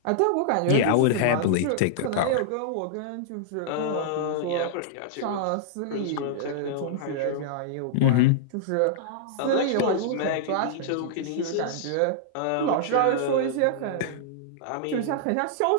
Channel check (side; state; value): both; different; correlation -0.01